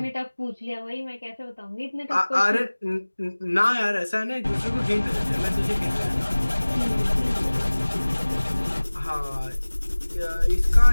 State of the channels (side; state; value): both; inverted; correlation -1.00